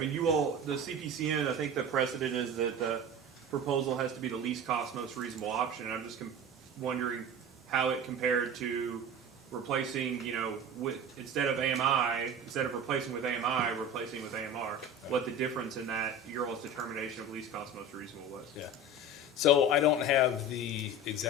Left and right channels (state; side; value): normal; both; correlation 0.33